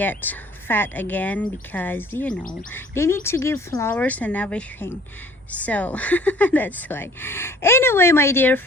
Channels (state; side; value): normal; both; correlation 0.53